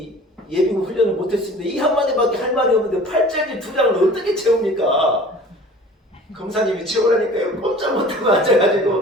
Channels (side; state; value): both; normal; correlation 0.45